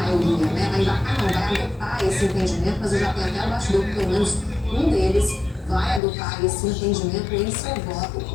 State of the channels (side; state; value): right; drops out; at 6.0 s